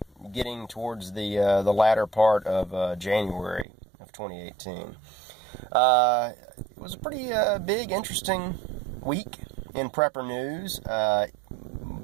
getting towards the latter part of January of 2018. It was a pretty big, interesting week in Prepper News.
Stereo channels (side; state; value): left; drops out; at 3.7 s